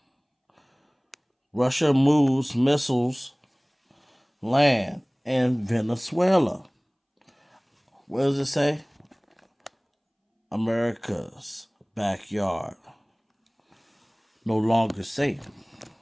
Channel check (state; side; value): identical; both; correlation 1.00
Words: Russia moves missiles land in Venezuela. What does it say? America's backyard. No longer safe.